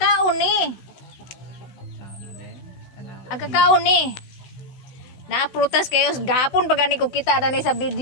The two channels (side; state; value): right; late; 16 ms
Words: ni. Agkakaon ni. Naaprutas kayo gapon pag ani ko kita na ni sa